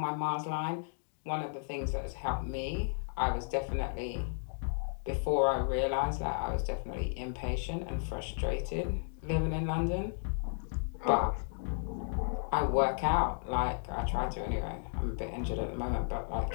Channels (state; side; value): silent; right; digital silence